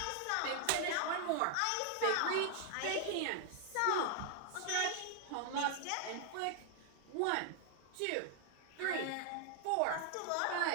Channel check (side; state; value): both; different; correlation 0.00